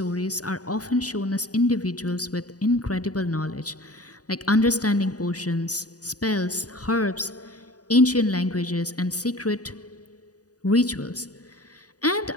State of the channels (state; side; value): late; right; 0.68 ms